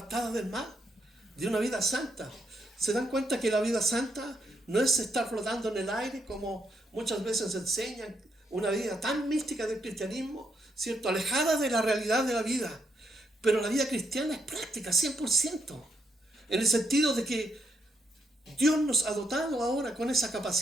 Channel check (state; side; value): normal; both; correlation 0.78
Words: del mal, de una vida santa. ¿Se dan cuenta que la vida santa no es estar flotando en el aire como muchas veces enseñan, una vida tan mística del cristianismo, ¿cierto?, alejada de la realidad de la vida? Pero la vida cristiana es práctica, 100%, en el sentido de que Dios nos ha dotado ahora con esa